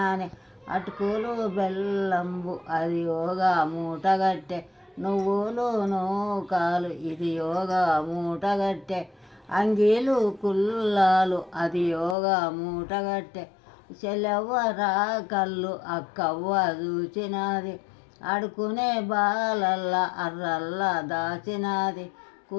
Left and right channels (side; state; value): right; drops out; at 12.2 s